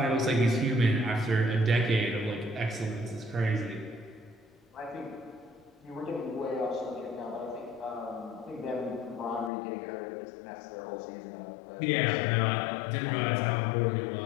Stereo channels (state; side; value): drops out; right; at 9.5 s